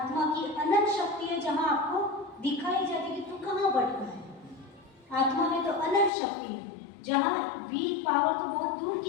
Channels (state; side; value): drops out; right; at 6.1 s